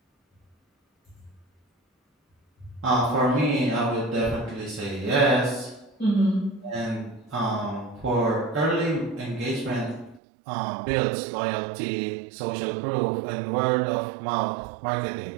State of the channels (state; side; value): drops out; left; at 10.2 s